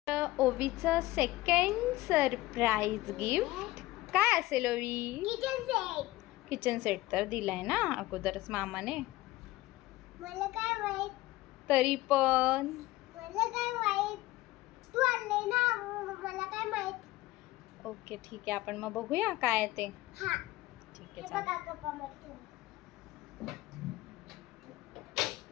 ओवीचं सेकंड सरप्राईज गिफ्ट काय असेल ओवी? किचन सेट तर दिलाय ना अगोदरच मामाने. मला काय माहित? तरी पण मला काय माहित? तू आणले ना, मला काय माहित? ओके ठीक आहे, आपण मग बघूया काय आहे ते. हा, ठीक हे आहे चालेल. बघा कपामध्ये.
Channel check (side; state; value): right; quieter; 18.1 dB